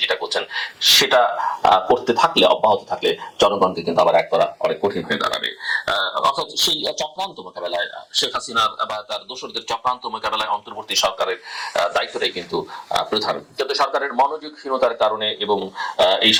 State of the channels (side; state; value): both; identical; correlation 1.00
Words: যেটা করছেন, সেটা করতে থাকলে, অব্যাহত থাকলে জনগণকে কিন্তু আবার এক করা অনেক কঠিন হয়ে দাঁড়াবে। অর্থাৎ সেই চক্রান্ত মোকাবেলায়, শেখ হাসিনা বা তার দোসরদের চক্রান্ত মোকাবেলায় অন্তর্বর্তী সরকারের দায়িত্বটাই কিন্তু প্রধান। কিন্তু সরকারের মনোযোগহীনতার কারণে এবং এই